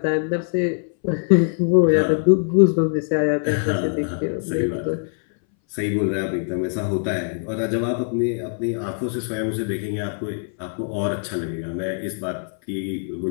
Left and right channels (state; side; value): silent; right; 61 dB below the other